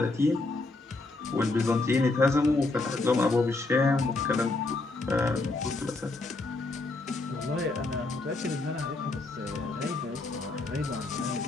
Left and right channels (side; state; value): right; quieter; 3.2 dB